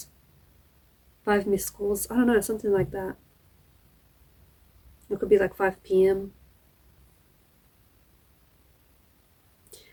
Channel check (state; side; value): identical; both; correlation 1.00